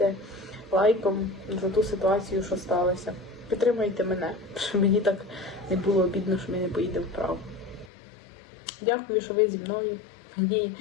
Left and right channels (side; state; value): right; drops out; at 7.9 s